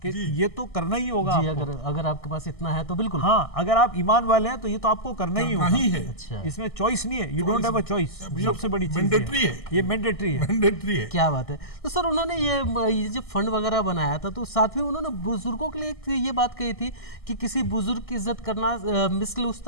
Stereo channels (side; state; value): right; late; 1.6 ms